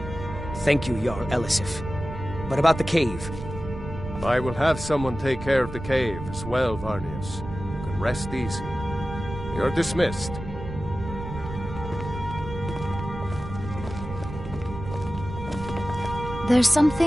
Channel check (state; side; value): noise; right; rumble, 9 dB below the sound